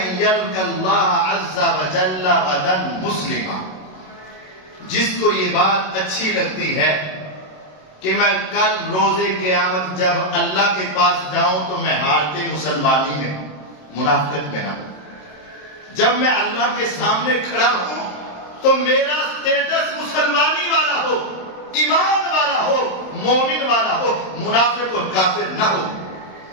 یلقى اللہ عز وجل غدا مسلما، جس کو یہ بات اچھی لگتی ہے کہ میں کل روز قیامت جب اللہ کے پاس جاؤں تو میں حالت مسلمانی میں، منافقت میں نہ ہوں، جب میں اللہ کے سامنے کھڑا ہوں تو میرا سٹیٹس مسلمانی والا ہو، ایمان والا ہو، مومن والا ہو، منافق اور کافر نہ ہو۔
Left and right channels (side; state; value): right; late; 27 ms